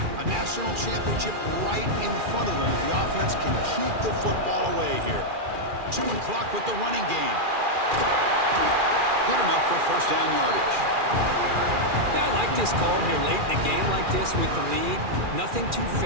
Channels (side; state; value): left; late; 2.4 ms